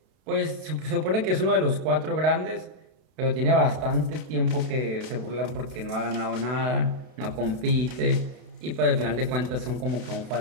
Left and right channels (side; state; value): left; late; 32 ms